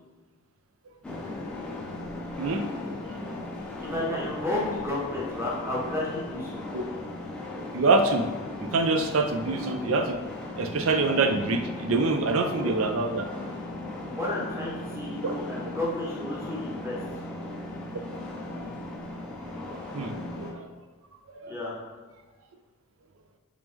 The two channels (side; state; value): both; normal; correlation 0.07